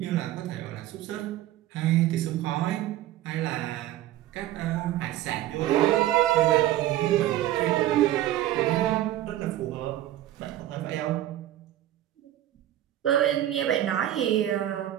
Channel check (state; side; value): quieter; left; 13.6 dB